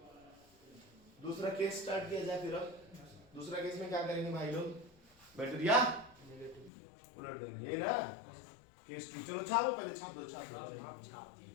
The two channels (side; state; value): right; drops out; at 6.7 s